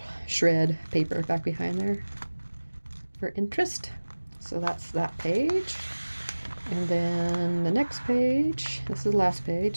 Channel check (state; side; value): inverted; both; correlation -1.00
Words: shred paper back behind there for interest. So that's that page. And then the next page, this is the last